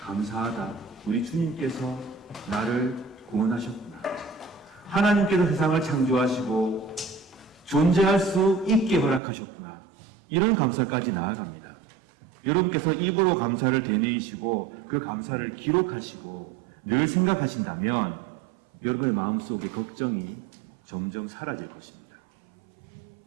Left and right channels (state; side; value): drops out; left; at 9.2 s